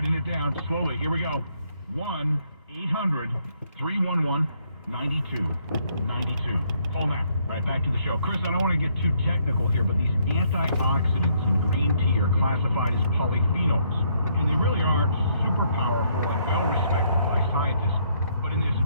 it down, slowly, here we go. 1-800-311-9292. Call now. All right, back to the show. Chris, I don't want to get too technical here, but these antioxidants in green tea are classified as polyphenols, and they really are super powerful and well respected by scientists. But in this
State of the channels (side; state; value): both; inverted; correlation -0.70